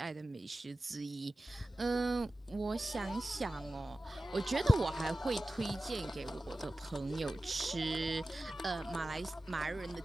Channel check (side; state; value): both; normal; correlation 0.95